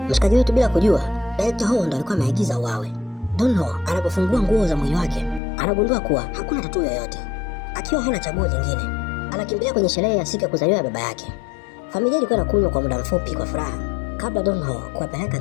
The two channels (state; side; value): drops out; right; at 5.4 s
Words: Mshikaji wetu bila kujua, Director Ho ndo alikuwa ameagiza uawe. Don Ho anapofungua nguo za mwili wake, anagundua kuwa hakuna tatuu yoyote. Akiwa hana chaguo lingine, anakimbilia kwenye sherehe ya siku ya kuzaliwa ya baba yake. Familia ilikuwa inakunywa kwa muda mfupi kwa furaha kabla Don Ho kuwapeleka